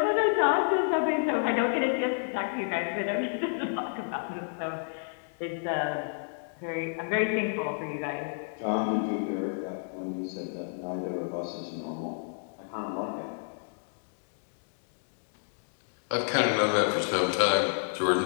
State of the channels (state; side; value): silent; right; digital silence